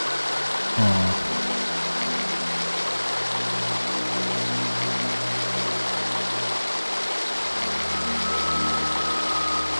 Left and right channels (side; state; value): both; inverted; correlation -1.00